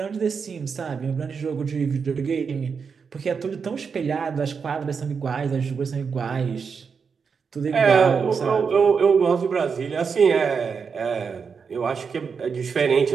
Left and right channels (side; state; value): left; quieter; 5.8 dB